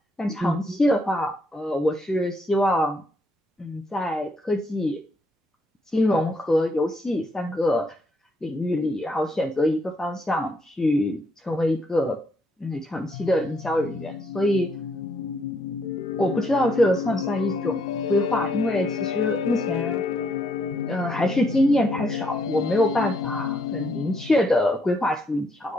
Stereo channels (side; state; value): both; normal; correlation 0.73